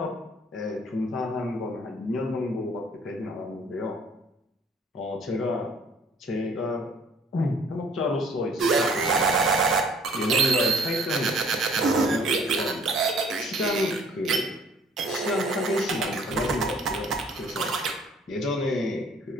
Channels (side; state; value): both; normal; correlation 0.56